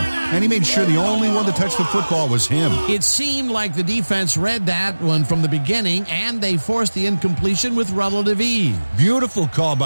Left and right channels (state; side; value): inverted; both; correlation -1.00